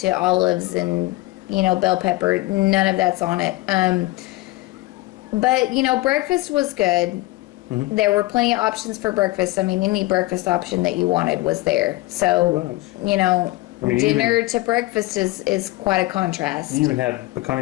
olives and, bell pepper. None of that's on it. But, breakfast was good. Mm-hmm. There were plenty of options for breakfast. I mean, any breakfast option that you wanted was there. So, dinner to breakfast is quite a contrast. You even had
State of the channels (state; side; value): quieter; right; 19.6 dB